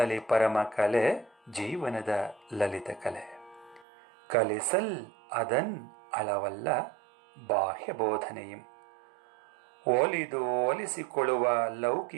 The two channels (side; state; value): left; drops out; at 3.9 s